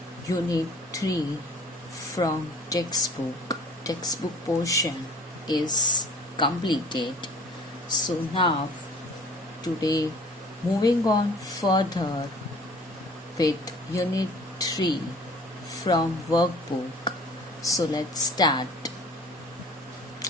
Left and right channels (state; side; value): normal; both; correlation 0.49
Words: Unit 3 from textbook. Textbook portion is completed. So now, today, moving on further with Unit 3 from Workbook. So let's start.